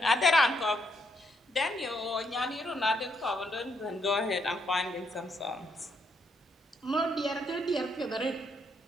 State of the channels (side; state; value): both; normal; correlation 0.75